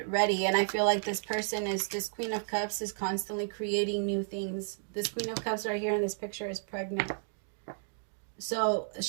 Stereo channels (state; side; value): silent; left; digital silence